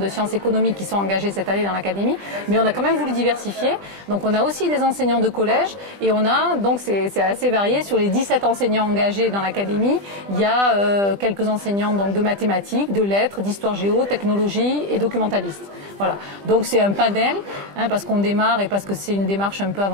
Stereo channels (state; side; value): late; left; 20 ms